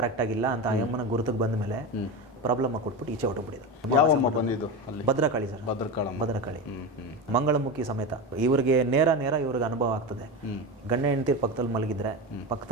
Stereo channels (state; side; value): normal; both; correlation 0.20